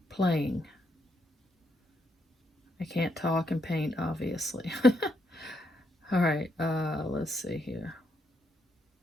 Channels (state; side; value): normal; both; correlation 0.77